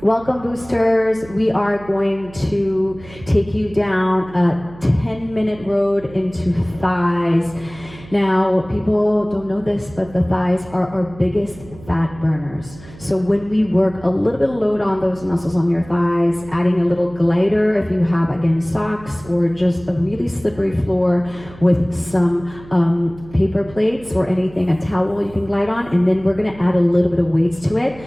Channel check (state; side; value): noise; right; hum, 19 dB below the sound